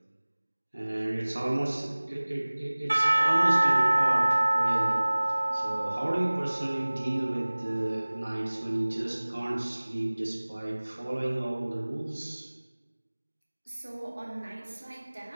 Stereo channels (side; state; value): both; inverted; correlation -1.00